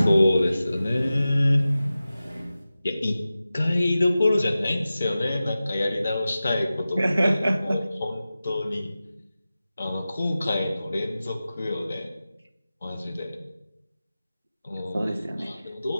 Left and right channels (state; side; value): inverted; both; correlation -0.95